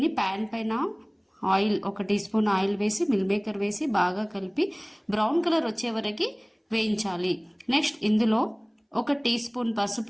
ప్యాన్ పైన ఆయిల్ 1 టీ స్పూన్ ఆయిల్ వేసి మిల్ మేకర్ వేసి బాగా కలిపి బ్రౌన్ కలర్ వచ్చే వరకు వేయించాలి. నెక్స్ట్ ఇందులో 1 టీ స్పూన్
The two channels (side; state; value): both; identical; correlation 1.00